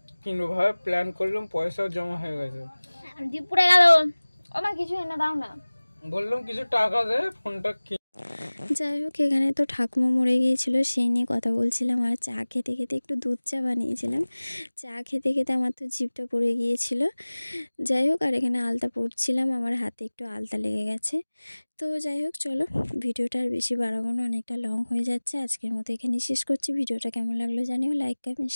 কিনবো ভাবে প্ল্যান করলাম, পয়সাও জমা হয়ে গেছে। পুড়ে গেল, আমার কিছু এনে দাও না। বললাম কিছু টাকা দে, ফোনটা যাই হোক, এখানে তো ঠাকুমা মরে গিয়েছিলো সেই নিয়ে কথা বলছিলাম, আর চা খেতে খেতে একটু দুধ চা বানিয়েছিলাম। চা খেতে খেতে আমার তো জিভটা পড়ে গিয়েছিল। যাই হোক, আর এখানে আলতা পরছিলাম, আমার হাতে একটু আলতা লেগে গেছে। তো যাই হোক চলো, ভিডিওটা আর বেশি বাড়াবো না, অনেকটা লং হয়ে যাচ্ছে। আজকের মতো এখানে শেষ করছি। ভিডিওটা কেমন লাগলো জানিও, লাইক কমেন্ট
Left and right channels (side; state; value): both; inverted; correlation -1.00